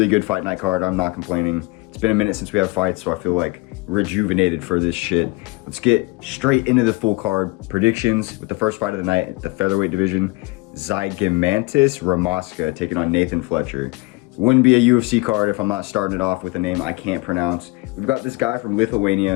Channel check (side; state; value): right; quieter; 23.6 dB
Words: good fight night card. I'm not complaining. It's been a minute since we have fights, so I feel like rejuvenated for this shit. Let's get straight into the full card predictions with the first fight of the night, the featherweight division. Zygomantis Ramoska taking on Nathan Fletcher. Wouldn't be a UFC card if I'm not starting it off with a name I can't pronounce. We've got this guy from